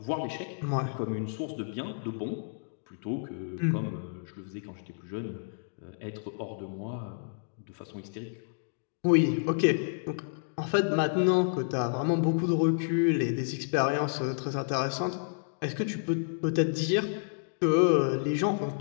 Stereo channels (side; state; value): right; silent; digital silence